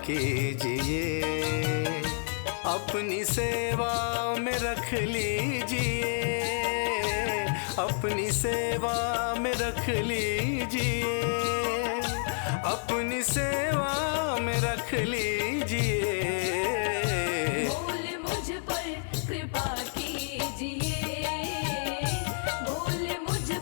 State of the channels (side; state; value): right; silent; 58 dB below the other